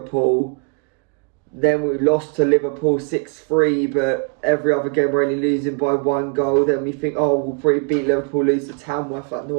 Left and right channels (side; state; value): left; quieter; 36.8 dB